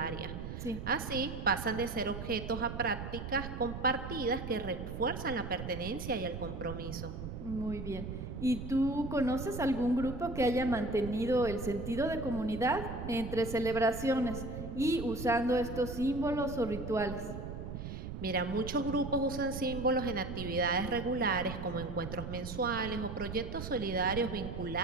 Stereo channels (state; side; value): noise; right; rumble, 7 dB below the sound